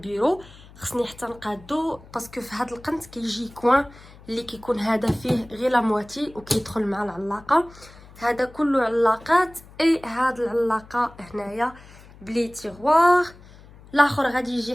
خصني حتى نقادو باسكو في هاد القنت كيجي كوين اللي كيكون هذا فيه غير لا مواتي وكيدخل مع العلاقه. هذا كله علاقات اي هاد العلاقه هنايا بلي تيغوار. الاخر غادي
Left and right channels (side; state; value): left; noise; hum, 22 dB below the sound